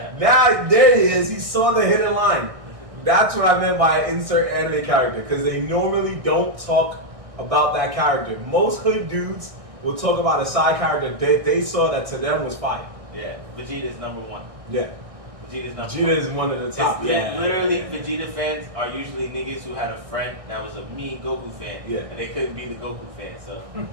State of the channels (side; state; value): left; late; 1.6 ms